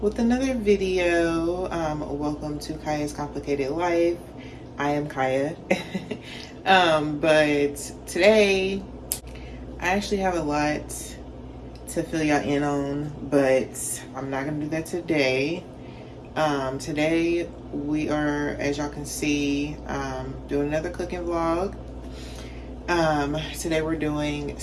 with another video. Welcome to Kya's Complicated Life. I am Kyia. But today I actually have a lot to fill y'all in on, but I'm not gonna do that today. Today we are, as y'all can see, doing another cooking vlog. Today we're doing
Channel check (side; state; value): both; identical; correlation 1.00